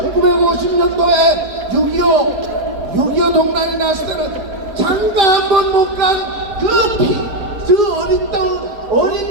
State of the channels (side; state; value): left; late; 4.6 ms